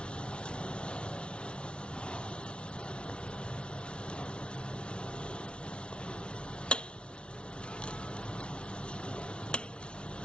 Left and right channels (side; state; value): right; late; 0.058 ms